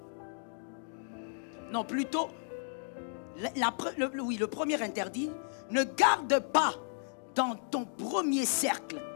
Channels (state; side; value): silent; right; digital silence